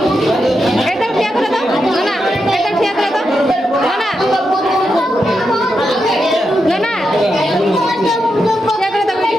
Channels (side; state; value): both; normal; correlation 0.85